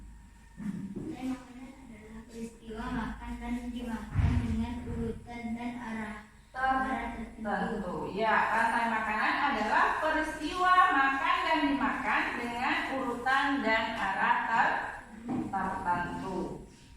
peristiwa makan dan dimakan dengan urutan dan arah tertentu. Ya, rantai makanan adalah peristiwa makan dan dimakan dengan urutan dan arah tertentu.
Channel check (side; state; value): both; identical; correlation 1.00